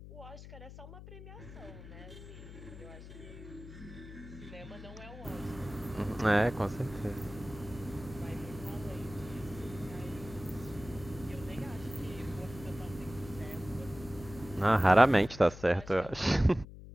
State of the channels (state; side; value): noise; left; hum, 14 dB below the sound